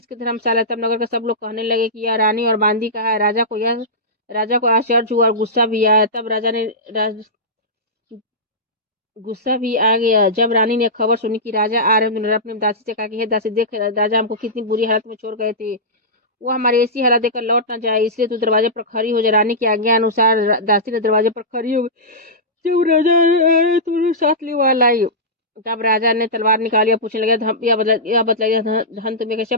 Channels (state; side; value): normal; both; correlation -0.15